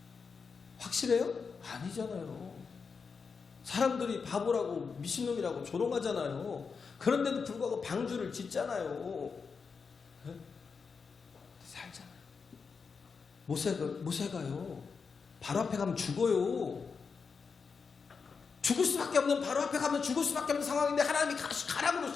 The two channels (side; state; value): right; quieter; 5.4 dB